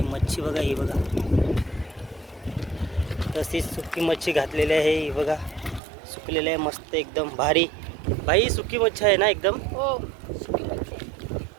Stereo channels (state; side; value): drops out; left; at 5.8 s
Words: मच्छी बघा ही बघा. तशीच सुकी मच्छी घातलेली आहे ही बघा, सुकलेली आहे मस्त एकदम भारी. भाई सुकी मच्छी आहे ना एकदम. हो सुकी मच्छी